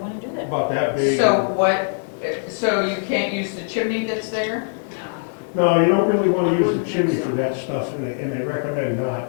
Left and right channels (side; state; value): right; silent; digital silence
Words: do that. about that big. So you can't use the chimney that's there? No, you don't really want to use the chimney for that stuff, and they recommend